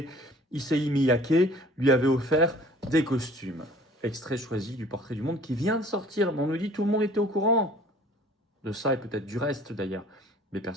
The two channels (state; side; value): normal; both; correlation 0.51